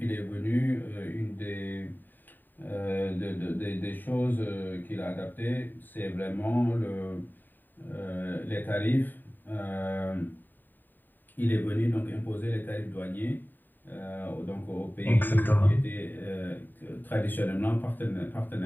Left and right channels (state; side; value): late; right; 0.091 ms